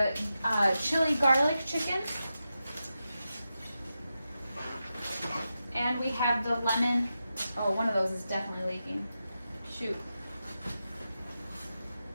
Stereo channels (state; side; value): inverted; both; correlation -0.90